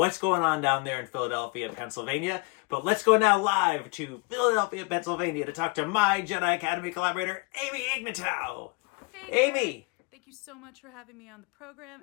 going on down there in Philadelphia, Pennsylvania, but let's go now live to Philadelphia, Pennsylvania to talk to my Jedi Academy collaborator, Amy Ignatow. Hey, Amy! Thank you so much for having me on the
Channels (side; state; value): right; quieter; 28.4 dB